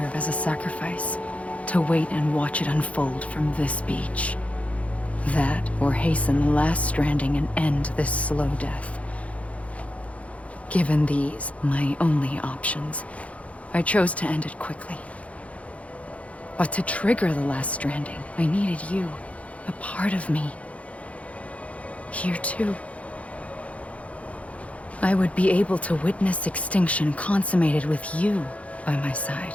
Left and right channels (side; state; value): right; late; 0.065 ms